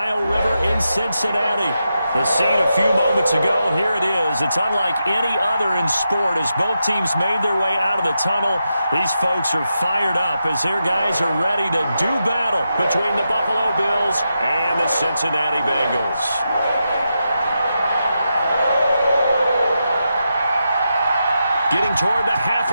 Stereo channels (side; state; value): both; inverted; correlation -0.87